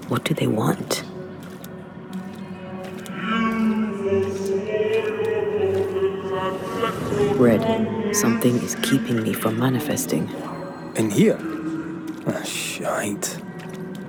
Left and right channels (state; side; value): identical; both; correlation 1.00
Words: What do they want? Red, something is keeping me from manifesting. In here? Ah, shite.